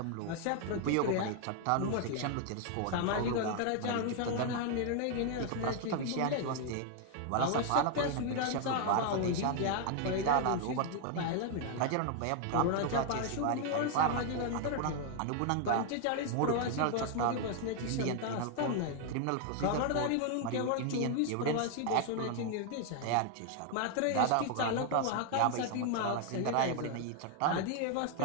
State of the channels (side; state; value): both; different; correlation 0.00